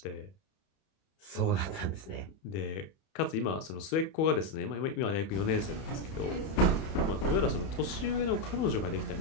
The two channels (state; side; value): late; right; 31 ms